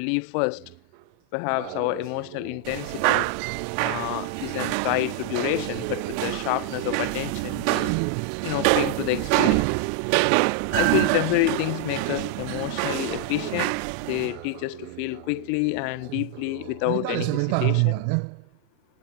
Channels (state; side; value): different; both; correlation 0.00